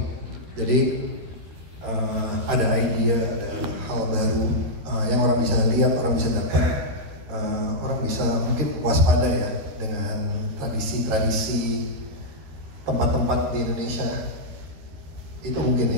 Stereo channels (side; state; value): left; late; 13 ms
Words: Jadi ada idea, ada hal baru yang orang bisa lihat, orang bisa dapat, orang bisa mungkin waspada ya dengan tradisi-tradisi tempat-tempat di Indonesia. Itu